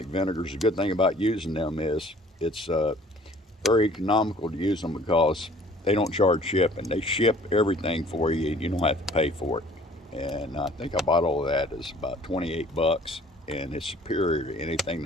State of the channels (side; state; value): both; normal; correlation 0.53